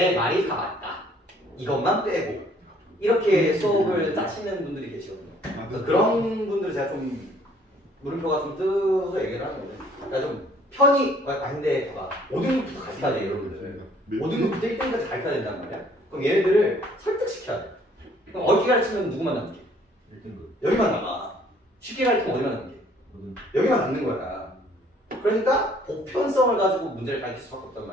말이 다 맞다. 이것만 빼고 이렇게 수업을 짜시는 분들이 계시거든요. 그래서 그런 분들 제가 좀 물음표가 좀 뜨서 얘기를 하는데 그러니까 좀 편히 근데 봐봐 5등급부터 같이 가야 돼 여러분들. 5등급부터 1등급까지 가르쳐야 된단 말이야. 그럼 얘네들을 설득시켜야 돼. 그럼 어떻게 가르치면 누구만 남게? 1등급. 여기만 남아. 쉽게 가르치면 어디만 남게? 여기만 남는 거야. 그러니까 보편성을 가지고 문제를 가르칠 수밖에 없단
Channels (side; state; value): both; normal; correlation 0.59